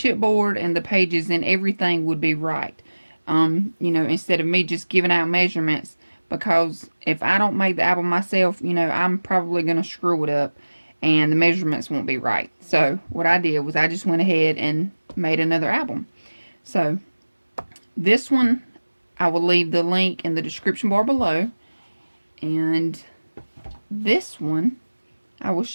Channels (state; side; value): inverted; both; correlation -1.00